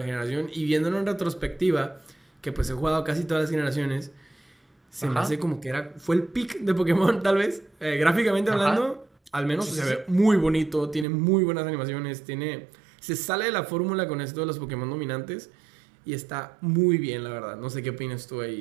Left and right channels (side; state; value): left; drops out; at 11.1 s